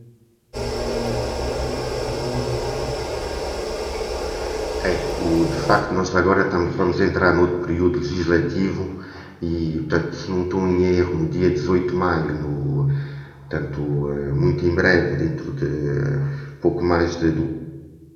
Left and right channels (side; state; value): both; identical; correlation 1.00